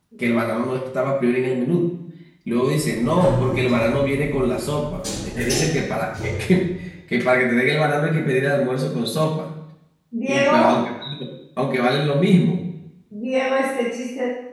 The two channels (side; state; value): both; identical; correlation 1.00